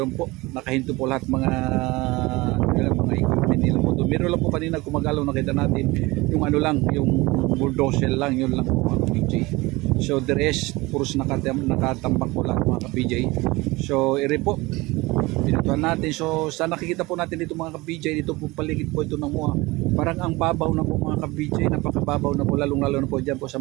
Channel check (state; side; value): quieter; left; 22.0 dB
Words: po, nakahinto po lahat mga equipment nila po doon. Meron lang po kanina gumagalaw, nakita natin yung ano lang, yung bulldozer lang, yun lang po mga ka-PJ. So the rest, puros nakatambak po lahat mga ka-PJ. So ere po, pinutuhan natin. So sa nakikita po natin dito mga ka-PJ, dito po paligid po ito ng MOA, parang ang babaw na po mga ka-PJ, napakababaw na po, lalong-lalo na po dyan po sa